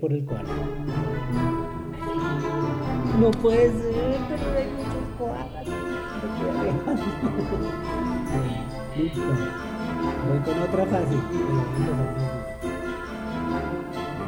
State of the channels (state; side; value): identical; both; correlation 1.00